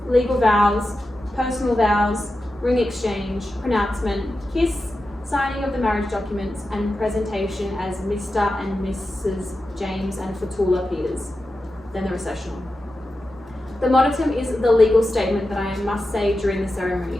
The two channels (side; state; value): both; normal; correlation 0.91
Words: legal vows, personal vows, ring exchange, pronouncement, kiss, signing of the marriage documents, and presentation as Mr. and Mrs. James and Toula Peters, then the recessional. The monotum is the legal statement that I must say during the